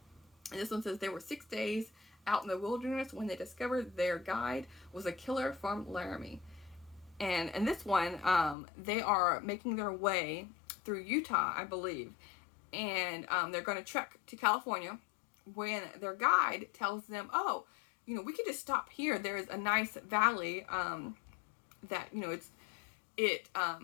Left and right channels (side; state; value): right; drops out; at 8.6 s